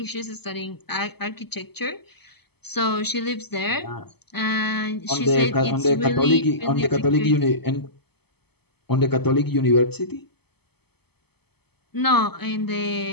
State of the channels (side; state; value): right; late; 0.97 ms